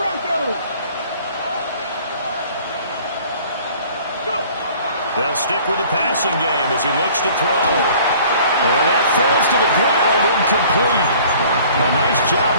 They'll stick with the passing game as he looks to throw. And that falls to the ground, incomplete. A nice job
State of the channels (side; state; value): both; inverted; correlation -0.51